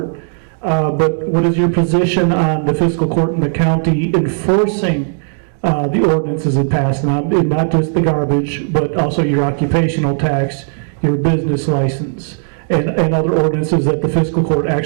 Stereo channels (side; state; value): left; silent; 63 dB below the other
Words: But what is your position on the fiscal court in the county enforcing the ordinances it passed, not just the garbage, but also your occupational tax, your business license, and other ordinances that the fiscal court